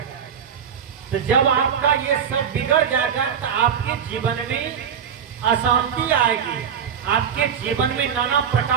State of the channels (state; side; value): quieter; left; 7.8 dB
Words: तो जब आपका ये सब बिगड़ जाएगा तो आपके जीवन में अशांति आएगी, आपके जीवन में नाना